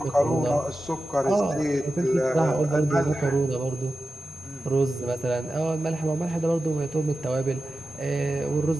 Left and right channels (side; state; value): both; normal; correlation 0.93